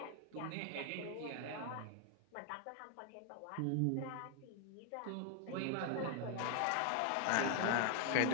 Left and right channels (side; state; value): both; different; correlation 0.00